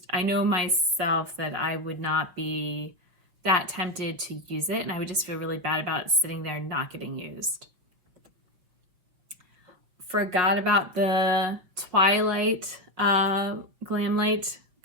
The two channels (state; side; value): late; left; 5.7 ms